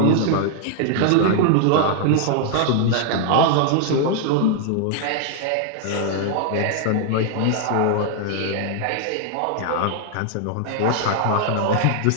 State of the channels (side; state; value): both; different; correlation 0.00